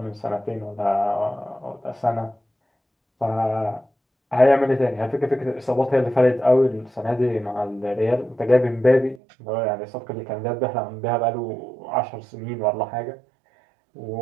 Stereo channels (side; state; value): left; drops out; at 9.2 s